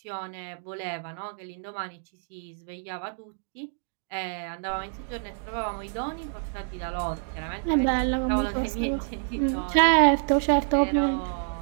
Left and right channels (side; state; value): left; silent; digital silence